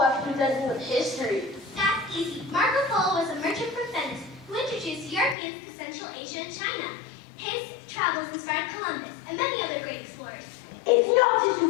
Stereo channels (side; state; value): right; drops out; at 5.4 s